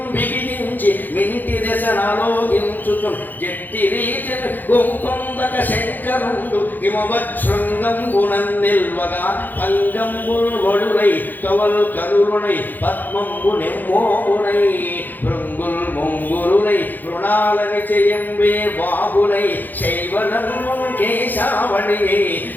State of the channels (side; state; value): right; late; 0.087 ms